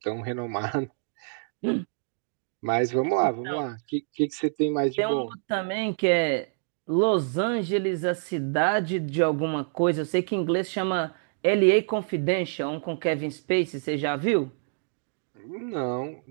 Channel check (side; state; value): left; silent; digital silence